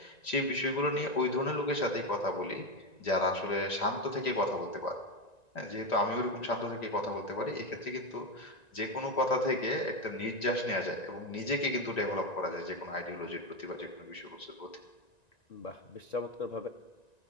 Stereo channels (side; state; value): right; late; 1.9 ms